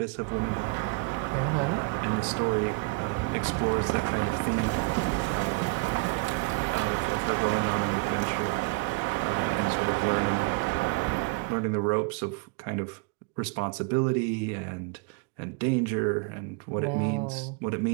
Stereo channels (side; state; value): left; quieter; 27.7 dB